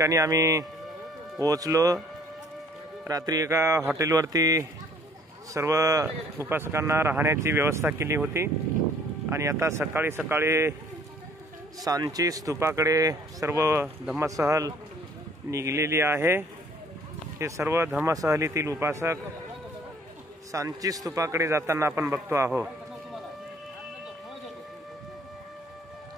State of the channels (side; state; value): both; normal; correlation 0.58